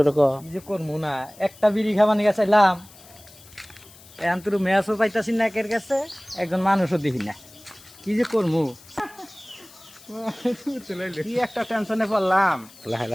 ক কি যে করবো না একটা বিড়ি খাবার নিয়ে চাইলাম এখন তোর ম্যাচও পাইতাছি না একের কাছে একজন মানুষও দেখি না কি যে করবো কি একটা টেনশনে পড়লাম। লাহে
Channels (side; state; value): left; noise; hiss, 22 dB below the sound